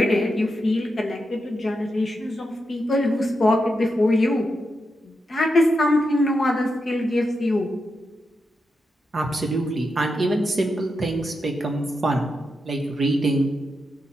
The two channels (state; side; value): normal; both; correlation 0.86